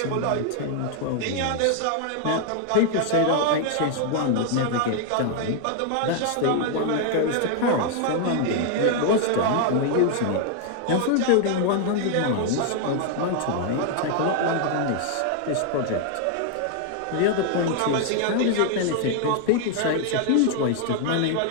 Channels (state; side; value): different; both; correlation 0.00